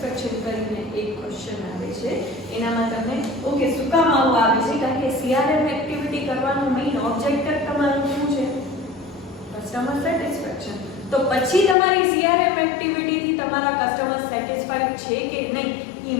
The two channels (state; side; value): drops out; right; at 11.8 s